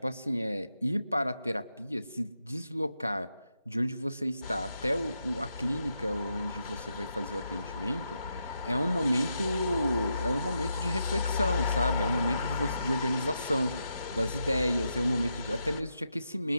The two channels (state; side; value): inverted; both; correlation -0.84